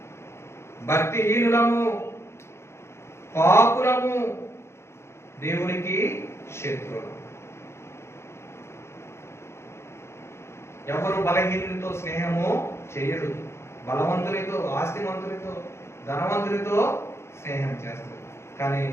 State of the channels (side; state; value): right; late; 0.13 ms